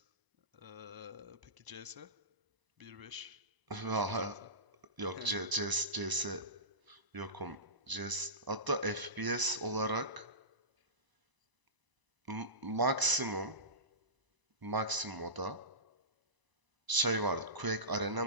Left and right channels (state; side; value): late; left; 1.0 ms